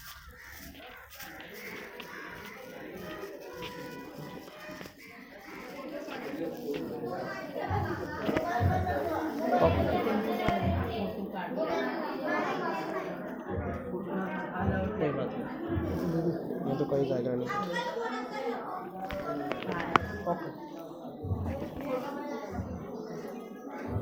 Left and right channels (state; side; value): identical; both; correlation 1.00